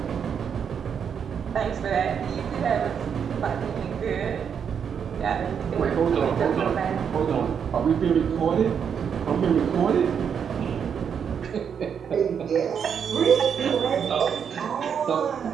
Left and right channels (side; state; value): left; quieter; 7.4 dB